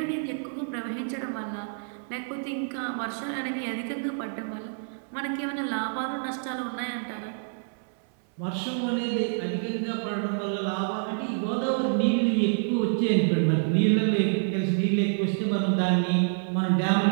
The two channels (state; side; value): silent; left; 59 dB below the other